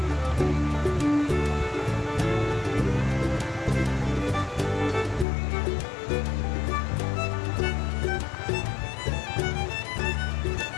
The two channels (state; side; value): drops out; right; at 5.2 s